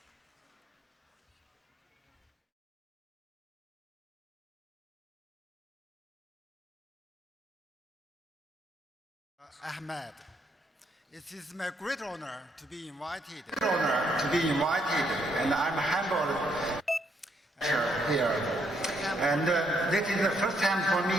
Ahmed. It is my great honor to be invited. And I'm humbled here. And this is the first time for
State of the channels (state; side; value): normal; both; correlation 0.73